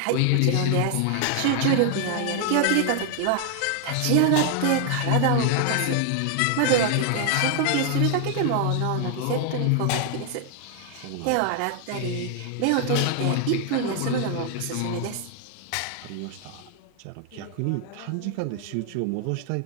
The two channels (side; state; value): both; different; correlation 0.00